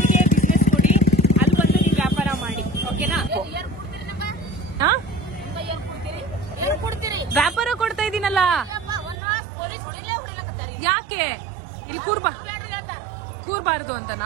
ಬಿಸ್ನೆಸ್ ಕೊಡಿ, ಅಲ್ಲಿ ಬಂದು ನೀವು ವ್ಯಾಪಾರ ಮಾಡಿ. ಓಕೆನಾ? ವ್ಯಾಪಾರ ಕೊಡ್ತಾ ಇದೀನಲ್ಲ, ಯಾಕೆ ಇಲ್ಲಿ ಕೂರ್ಬಾರ್ದು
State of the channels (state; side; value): drops out; left; at 9.2 s